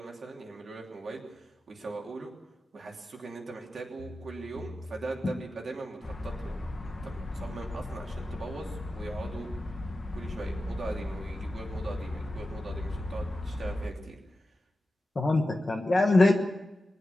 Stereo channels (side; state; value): both; normal; correlation 0.93